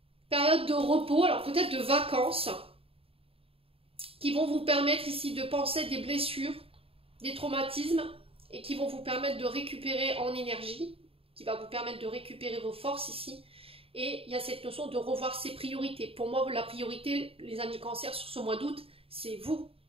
période de repos, alors peut-être de vacances, qui vont vous permettre ici de penser des blessures, des traumatismes, et qui vont vous permettre de récupérer en énergie, qui va vous permettre de récupérer vos forces ici, Et il y a cette notion de revoir ses priorités. Pour moi, la priorité, les amis Cancer, sur ce mois d'août, c'est vous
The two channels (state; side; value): late; left; 0.27 ms